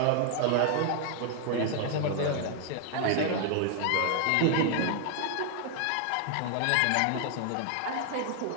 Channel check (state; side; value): different; both; correlation 0.00